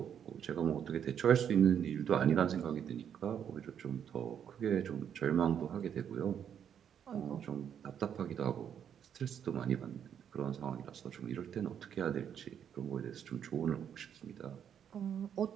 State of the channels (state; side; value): quieter; left; 8.7 dB